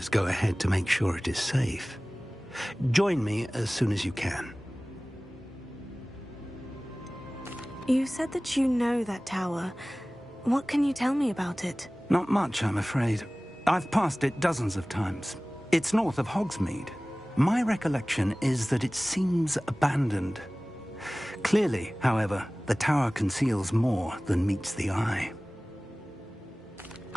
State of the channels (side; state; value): both; normal; correlation 0.98